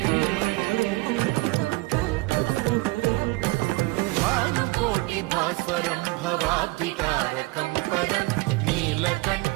भास्वरं भवाब्धिकारकं परं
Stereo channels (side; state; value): left; quieter; 22.9 dB